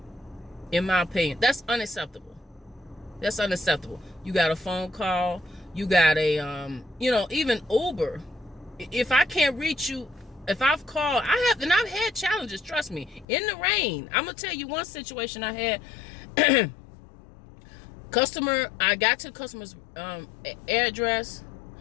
in my opinion. That's unacceptable. That's unacceptable. You got a phone call. You got a, you know, even Uber. If I can't reach you, if I've called, I've had challenges, trust me, in the rain. I'm going to tell you one situation I had. I got to the customer's address.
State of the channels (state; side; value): drops out; right; at 13.2 s